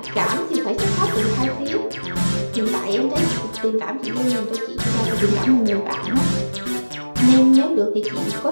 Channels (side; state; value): both; inverted; correlation -1.00